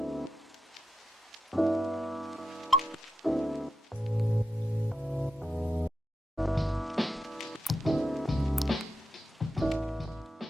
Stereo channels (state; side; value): normal; both; correlation 0.88